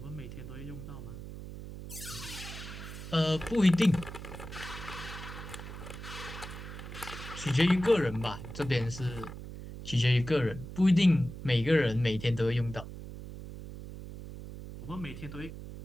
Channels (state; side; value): noise; right; hum, 11 dB below the sound